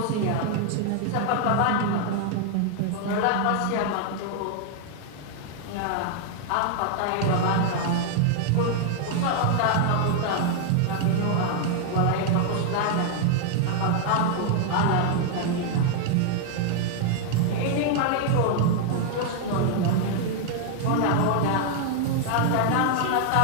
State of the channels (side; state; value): both; different; correlation 0.00